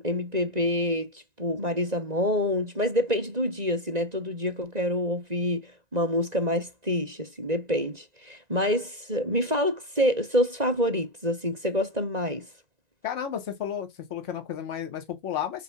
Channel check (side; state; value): left; late; 1.9 ms